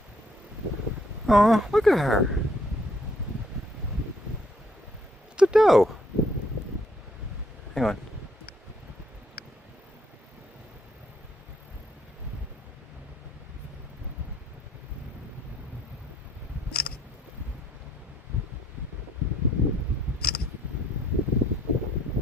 Oh, look at her. It's a doe. Hang on.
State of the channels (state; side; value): normal; both; correlation 0.66